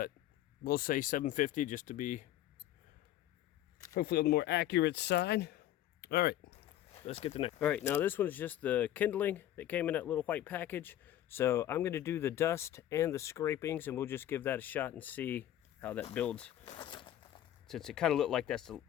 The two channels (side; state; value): right; quieter; 12.4 dB